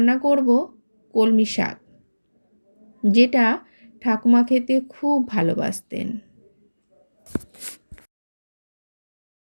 করব কলমি শাক, যেটা ঠাকুমা খেতে খুব ভালোবাসতেন।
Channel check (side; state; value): both; inverted; correlation -1.00